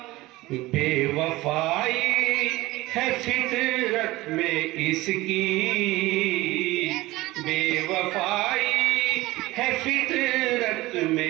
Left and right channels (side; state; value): left; quieter; 19.1 dB